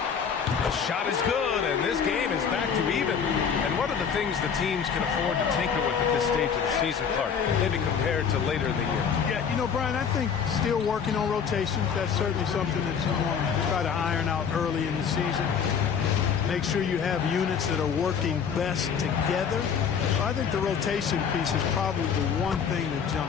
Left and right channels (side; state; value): right; quieter; 6.9 dB